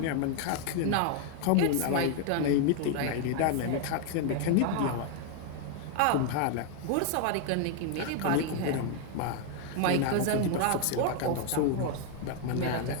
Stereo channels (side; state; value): both; different; correlation 0.00